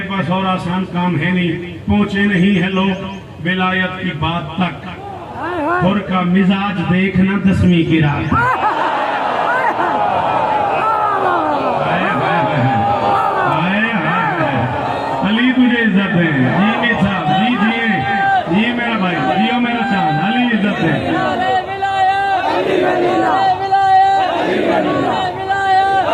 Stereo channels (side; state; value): both; identical; correlation 1.00